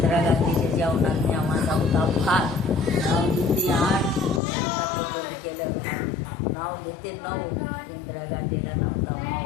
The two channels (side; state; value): right; drops out; at 4.4 s